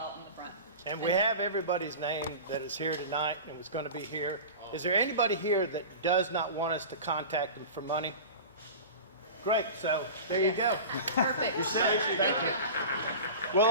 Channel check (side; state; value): both; inverted; correlation -0.32